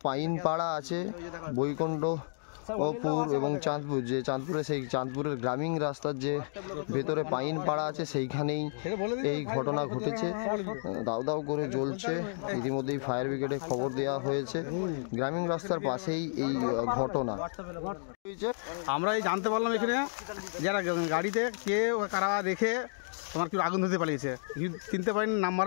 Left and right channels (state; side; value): silent; right; digital silence